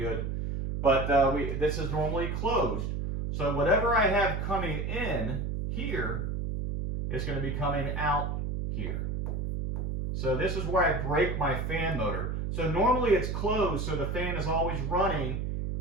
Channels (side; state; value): right; noise; hum, 2 dB below the sound